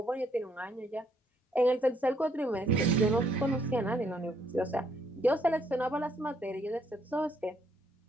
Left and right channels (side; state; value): both; normal; correlation 0.71